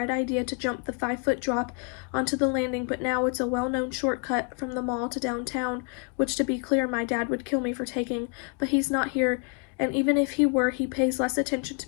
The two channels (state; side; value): quieter; right; 36.5 dB